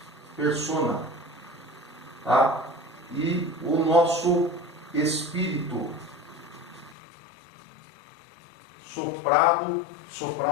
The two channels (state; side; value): drops out; right; at 7.0 s